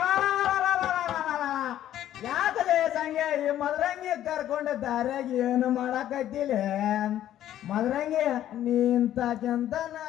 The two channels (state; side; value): quieter; right; 12.0 dB